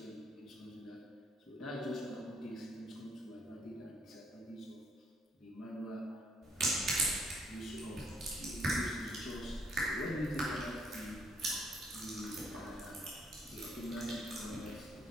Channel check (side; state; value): both; normal; correlation 0.68